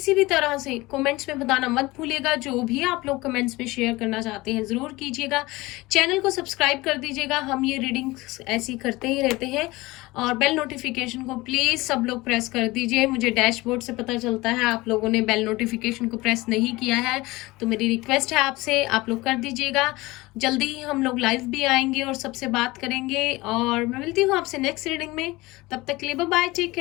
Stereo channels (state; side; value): quieter; right; 20.9 dB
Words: भी तरह से कमेंट्स में बताना मत भूलिएगा। जो भी आप लोग कमेंट्स में शेयर करना चाहते हैं ज़रूर कीजिएगा। चैनल को सब्सक्राइब कर दीजिएगा। हम ये रीडिंग्स ऐसी करते ही रहते हैं। और बेल नोटिफिकेशन को प्लीज़ सब लोग प्रेस कर दीजिए। मुझे डैशबोर्ड से पता चलता है आप लोगों ने बेल नोटिफिकेशन को प्रेस नहीं किया है, तो मेरी रिक्वेस्ट है आपसे आप लोग कर दीजिएगा। जल्दी ही हम लोग लाइव भी आएंगे और सबसे बात करेंगे। और मैं मिलती हूँ आपसे नेक्स्ट रीडिंग में। तब तक के लिए bye bye, take